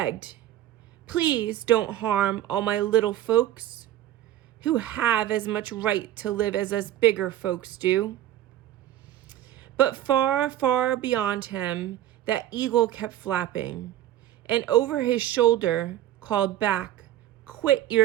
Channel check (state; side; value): quieter; left; 12.8 dB